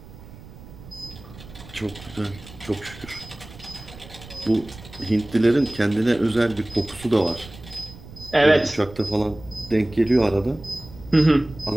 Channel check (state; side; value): noise; right; rumble, 18 dB below the sound